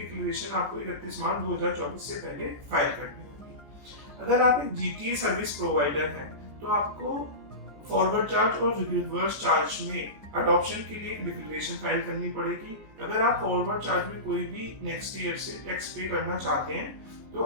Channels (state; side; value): late; left; 14 ms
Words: आपको 31 मार्च 2024 से पहले फाइल करनी होगी। अगर आप एक जीटीए सर्विस प्रोवाइडर हैं तो आपको फॉरवर्ड चार्ज और रिवर्स चार्ज में अडॉप्शन के लिए एक डिक्लेरेशन फाइल करनी पड़ेगी। अगर आप फॉरवर्ड चार्ज में कोई भी नेक्स्ट ईयर से टैक्स पे करना चाहते हैं तो